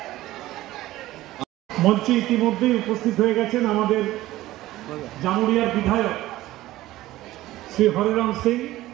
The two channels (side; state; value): left; quieter; 16.2 dB